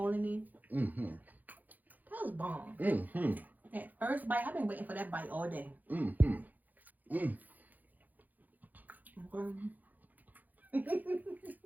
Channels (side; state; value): left; late; 0.083 ms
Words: in it. That was bomb. That first bite, I've been waiting for that bite all day. Okay.